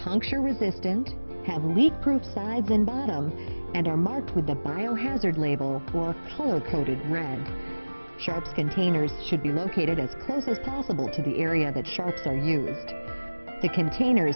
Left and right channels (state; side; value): inverted; both; correlation -1.00